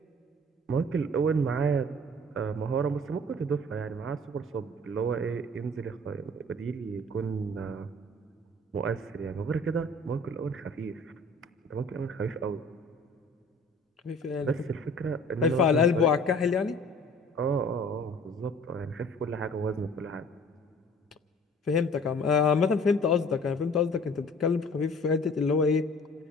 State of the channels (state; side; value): normal; both; correlation 0.49